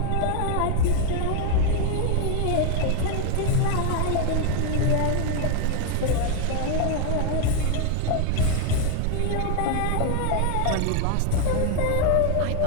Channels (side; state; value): both; different; correlation 0.00